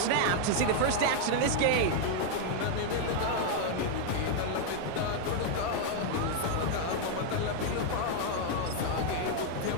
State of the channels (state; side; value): different; both; correlation 0.00